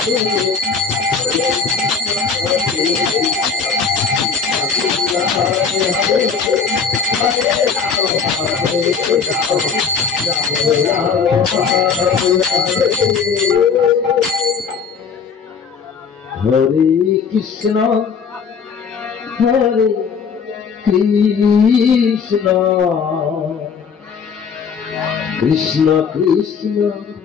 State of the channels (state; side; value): quieter; right; 5.9 dB